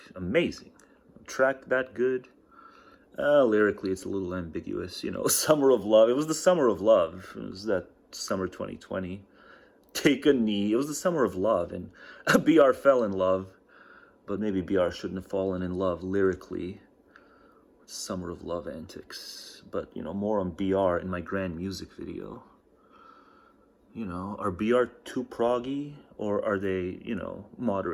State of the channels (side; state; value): both; identical; correlation 1.00